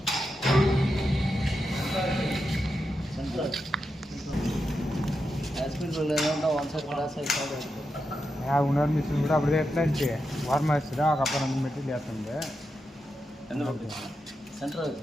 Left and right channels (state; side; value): normal; both; correlation 0.87